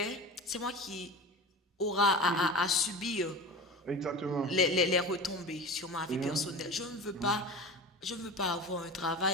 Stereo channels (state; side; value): normal; both; correlation 0.32